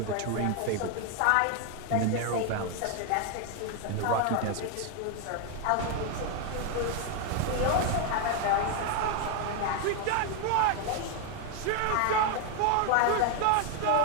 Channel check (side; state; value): both; different; correlation 0.01